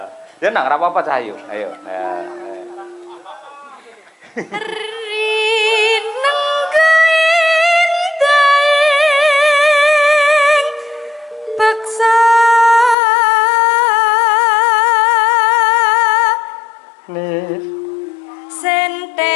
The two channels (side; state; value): right; drops out; at 13.0 s